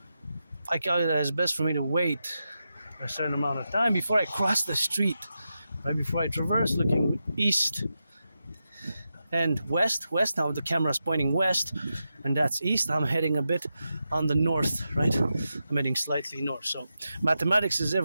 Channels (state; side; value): inverted; both; correlation -0.89